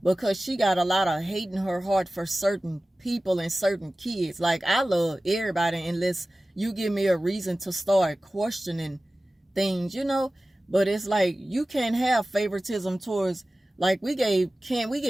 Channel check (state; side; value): normal; both; correlation 0.96